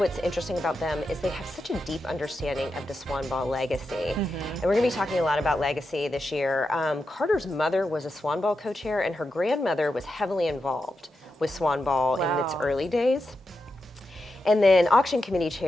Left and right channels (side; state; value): both; normal; correlation 0.88